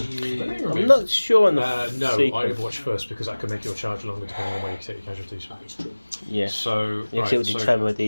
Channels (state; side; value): inverted; both; correlation -1.00